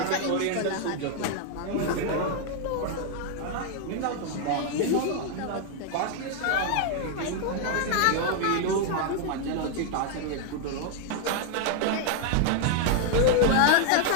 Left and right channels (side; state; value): both; different; correlation 0.00